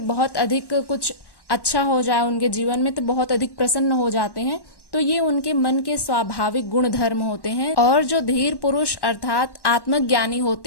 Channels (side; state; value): right; late; 1.1 ms